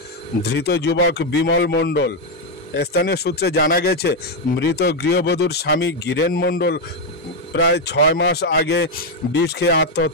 ধৃত যুবক বিমল মণ্ডল। স্থানীয় সূত্রে জানা গেছে, মৃত গৃহবধূর স্বামী গিরেন মণ্ডল প্রায় 6 মাস আগে বিষ খেয়ে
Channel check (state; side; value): normal; both; correlation 0.04